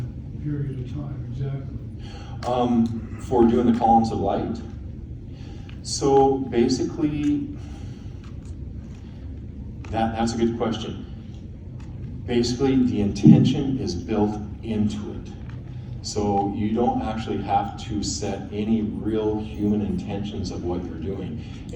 period of time exactly? For doing the columns of light. So basically, that's a good question. Basically, the intention is built into it. So you don't actually have to set any real human intentions of what you're doing.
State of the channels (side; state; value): both; identical; correlation 1.00